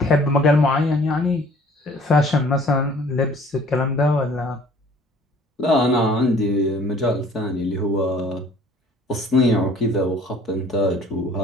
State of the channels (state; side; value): normal; both; correlation 0.53